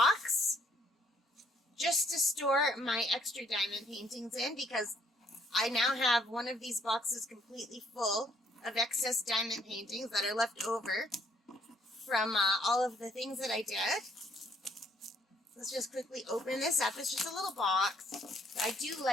just to store my extra diamond paintings in, because I now have one of these boxes completely full of excess diamond paintings that are left over from all of the things that I did. Let's just quickly open this up. It's just a little box. I do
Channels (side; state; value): both; normal; correlation 0.66